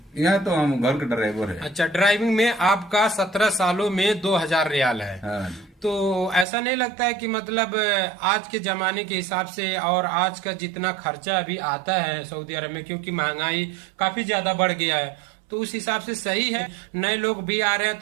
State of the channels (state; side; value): drops out; left; at 6.5 s